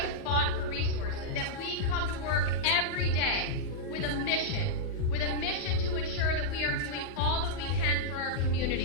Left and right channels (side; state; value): both; normal; correlation -0.05